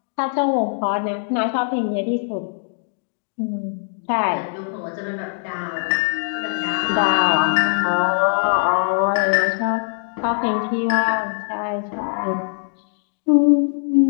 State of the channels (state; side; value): silent; right; digital silence